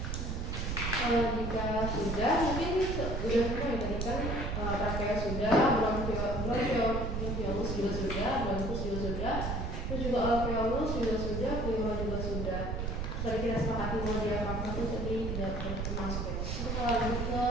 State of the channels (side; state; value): right; noise; rumble, 2 dB below the sound